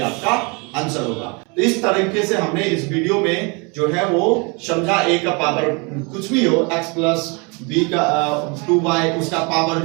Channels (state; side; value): quieter; left; 30.9 dB